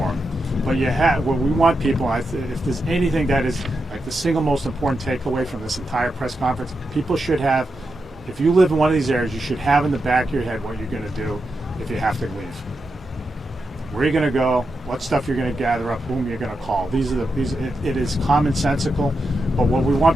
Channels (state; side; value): normal; both; correlation 0.87